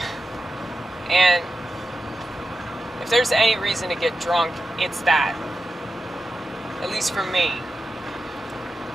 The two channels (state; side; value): normal; both; correlation 0.91